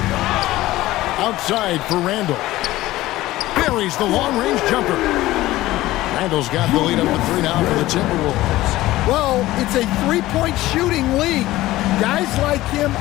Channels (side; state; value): right; quieter; 16.8 dB